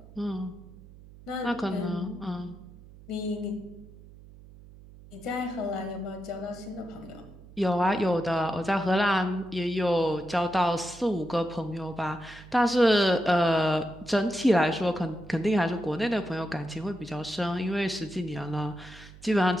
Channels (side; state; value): right; noise; hum, 20 dB below the sound